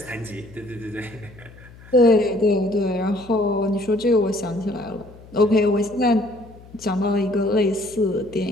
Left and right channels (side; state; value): left; noise; hum, 21 dB below the sound